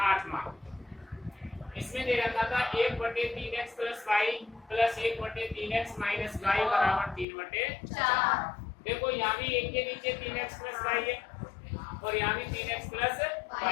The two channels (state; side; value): drops out; right; at 7.2 s